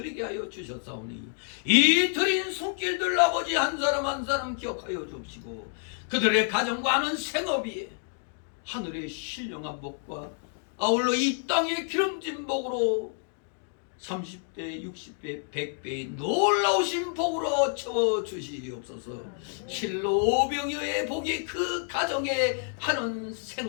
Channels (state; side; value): silent; right; 59 dB below the other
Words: 하여 주셨사오니 이 드린 손길들 아버지 한 사람 한 사람 기억하여 주시고 그들의 가정과 하는 생업이 하늘의 신령한 복과 아울러 이 땅의 기름진 복으로 30배, 60배, 100배의 놀라우신 복으로 채워주시옵소서. 실로 오병이어의 복이 그 가정에 하는